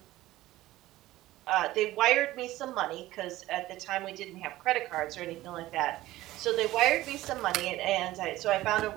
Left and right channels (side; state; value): left; quieter; 16.4 dB